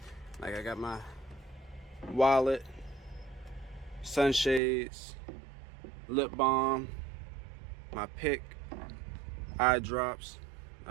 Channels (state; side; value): drops out; left; at 4.6 s